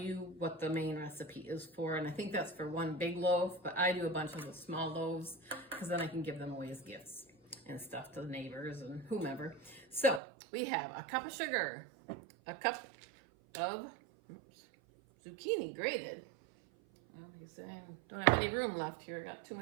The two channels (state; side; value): drops out; left; at 10.2 s